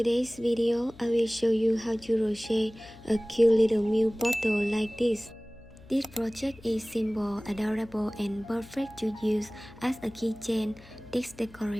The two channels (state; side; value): noise; left; hum, 22 dB below the sound